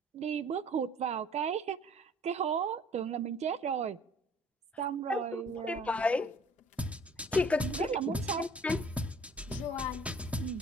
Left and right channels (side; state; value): both; normal; correlation 0.53